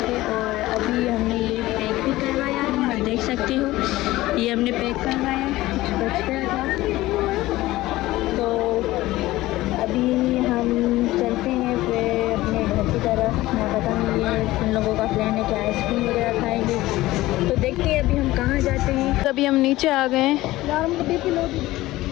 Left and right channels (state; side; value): quieter; right; 17.4 dB